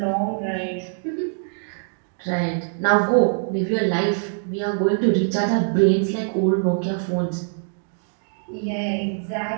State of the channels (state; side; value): silent; left; digital silence